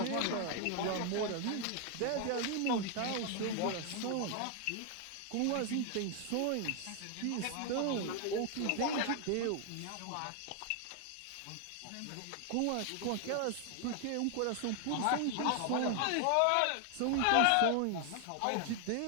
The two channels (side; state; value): both; different; correlation 0.00